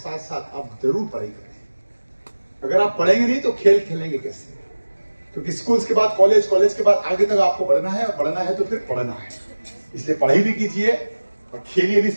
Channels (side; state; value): both; inverted; correlation -1.00